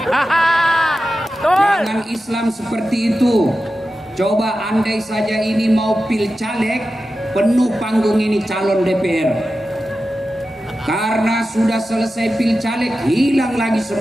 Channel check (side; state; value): both; normal; correlation 0.92